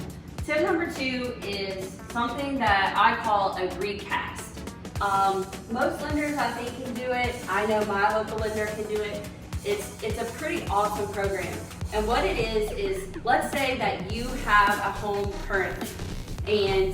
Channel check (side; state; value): both; identical; correlation 1.00